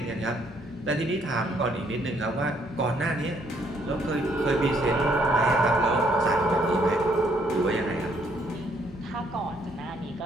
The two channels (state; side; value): normal; both; correlation 0.68